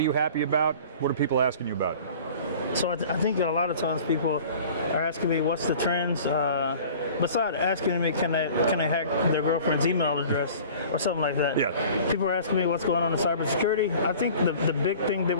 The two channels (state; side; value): inverted; both; correlation -0.45